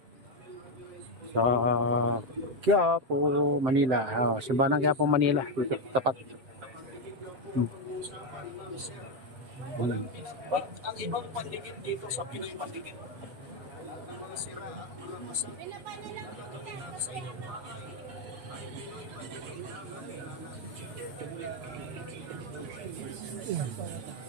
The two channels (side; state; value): left; late; 7.8 ms